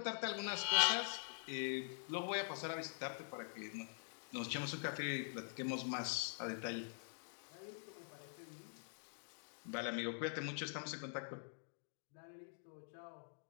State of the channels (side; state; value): right; silent; digital silence